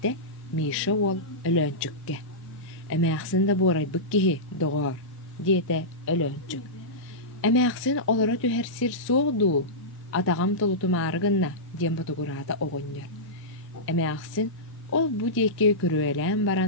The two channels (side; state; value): both; normal; correlation -0.14